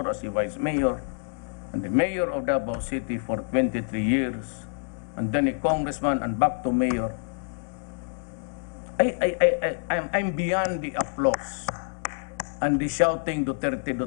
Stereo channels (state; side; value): silent; right; digital silence